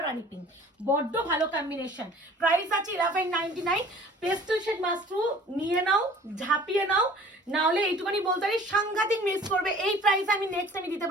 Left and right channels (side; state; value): both; normal; correlation 0.49